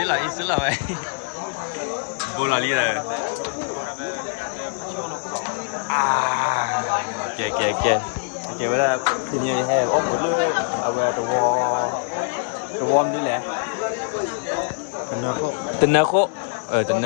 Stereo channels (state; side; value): silent; right; 63 dB below the other